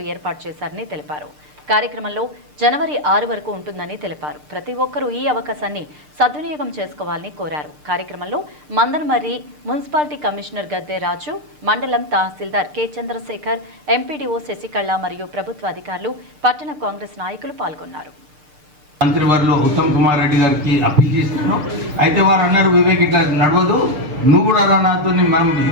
ఏర్పాటు చేశారని తెలిపారు. కార్యక్రమంలో జనవరి 6 వరకు ఉంటుందని తెలిపారు. ప్రతి ఒక్కరూ ఈ అవకాశాన్ని సద్వినియోగం చేసుకోవాలని కోరారు. కార్యక్రమంలో మందమర్రి మున్సిపాలిటీ కమిషనర్ గద్దె రాజు, మండలం తహసీల్దార్ కె చంద్రశేఖర్, ఎంపీడీఓ శశికళ మరియు ప్రభుత్వ అధికారులు, పట్టణ కాంగ్రెస్ నాయకులు పాల్గొన్నారు. మంత్రివర్యులు ఉత్తమ్ కుమార్ రెడ్డి గారికి అప్పీల్ చేస్తున్నాం. అయితే వారు అన్నారు, వివేక్ ఇట్లా నడవదు, నువ్వు కూడా రా నాతో, మనం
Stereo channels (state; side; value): late; left; 6.7 ms